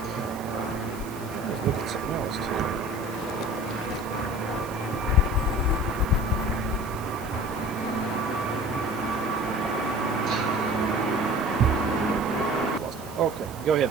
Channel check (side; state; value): right; noise; hiss, 18 dB below the sound